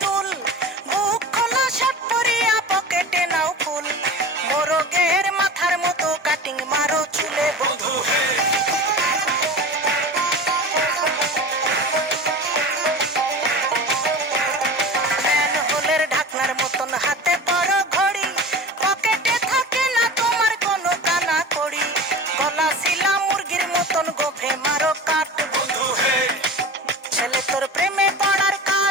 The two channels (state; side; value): normal; both; correlation 0.34